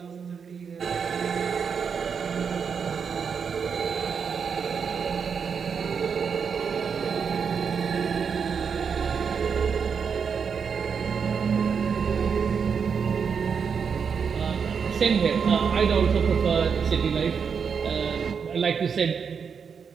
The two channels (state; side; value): quieter; left; 6.4 dB